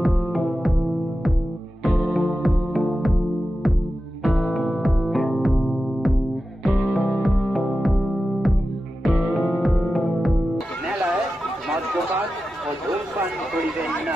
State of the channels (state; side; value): normal; both; correlation 0.92